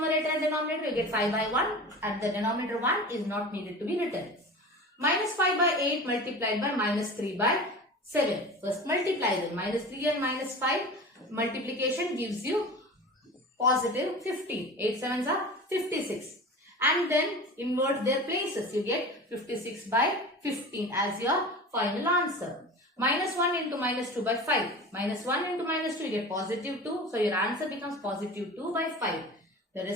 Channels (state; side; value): normal; both; correlation 0.34